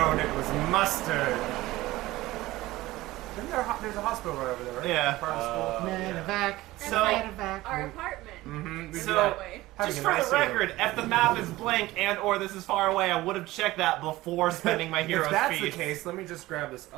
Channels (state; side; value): quieter; left; 17.9 dB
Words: it was mustard. There's a hospital right over there, right? Yeah. Part of the school. Medevac. So- Medevac. Our apartment. Mm-hmm. So, way. just for the record, if the map is blank and/or this is far away, I would have checked that before spending my hero's If that's feast. the case, let me just grab this